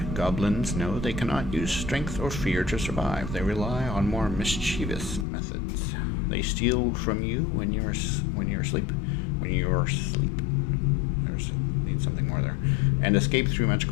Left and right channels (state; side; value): drops out; right; at 5.2 s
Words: goblins know they cannot use strength or fear to survive. They rely on more mischievous methods. They steal from you when you're asleep. Need something more there. And escape through